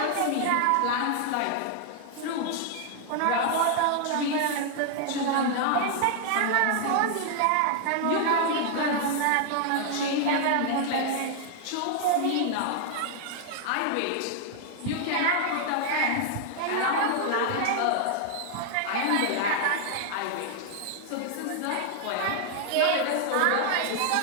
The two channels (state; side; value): different; both; correlation 0.00